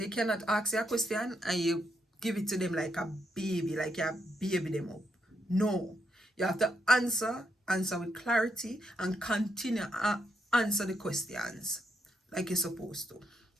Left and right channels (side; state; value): both; normal; correlation 0.79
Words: cannot ask you a question and you give it to them like a baby, like you baby them up. No, you have to answer with clarity and continue answer the questions like you're supposed to.